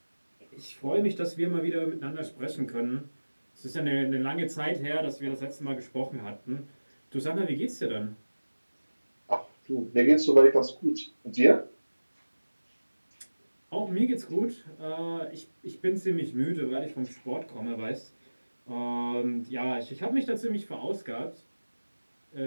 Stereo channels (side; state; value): both; inverted; correlation -1.00